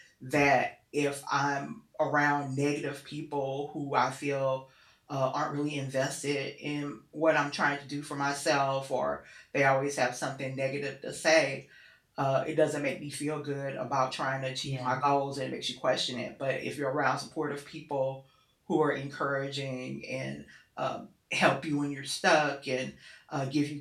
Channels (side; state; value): both; identical; correlation 1.00